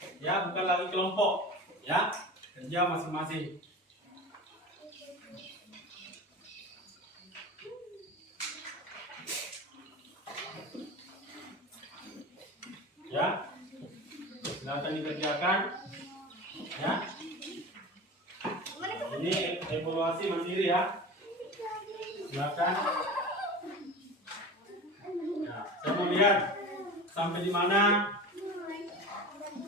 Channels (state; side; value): normal; both; correlation 0.32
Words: ya, bukan lagi kelompok, ya, kerja masing-masing. Ya, silakan dikerjakan, ya. Ini evaluasi mandiri, ya. Silakan. Nah, saya mau lihat sampai di mana